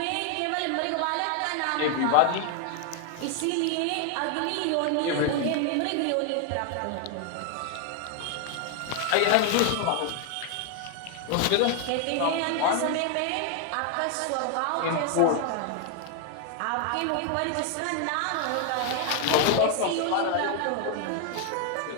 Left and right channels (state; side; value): different; both; correlation 0.00